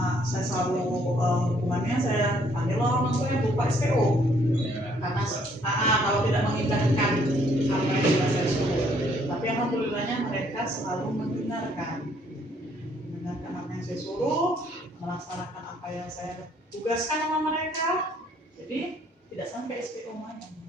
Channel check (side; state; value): both; normal; correlation 0.65